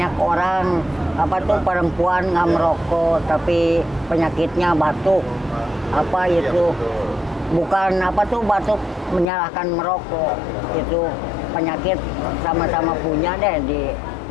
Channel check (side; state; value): right; drops out; at 9.3 s